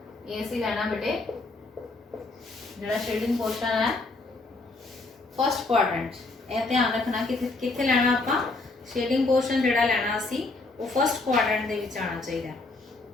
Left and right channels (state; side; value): quieter; right; 3.4 dB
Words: ये सी लेना बेटे जरा शेडिंग पोर्शन है फर्स्ट क्वाड्रेंट। ये ध्यान रखना कितने लेना आपका शेडिंग पोर्शन जिहड़ा लैना असी वो फर्स्ट क्वाड्रेंट दे विच आना चाहिए,